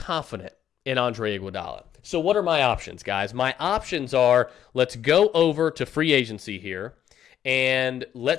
in Andre Iguodala. So what are my options, guys? My options are, let's go over to free agency here, and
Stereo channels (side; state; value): right; quieter; 10.0 dB